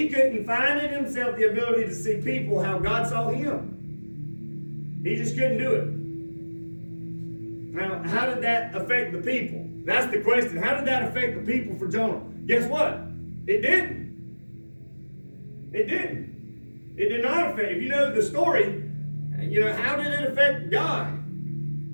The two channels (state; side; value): inverted; both; correlation -1.00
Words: couldn't find in himself the ability to see people how God saw him. He just couldn't do it. Now, how did that affect the people? That's the question. How did that affect the people for Jonah? Guess what? It didn't. It didn't. It did not affect. If you know the story, how did it affect God?